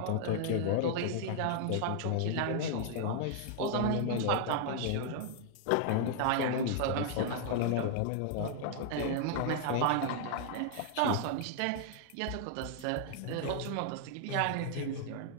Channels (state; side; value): different; both; correlation 0.00